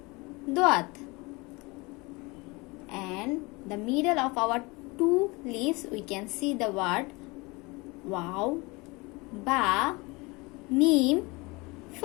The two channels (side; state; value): right; quieter; 25.4 dB